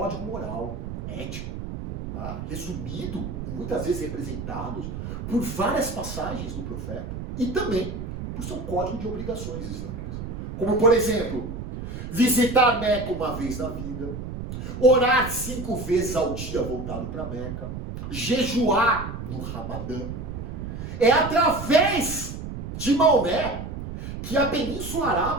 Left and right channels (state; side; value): noise; right; rumble, 7 dB below the sound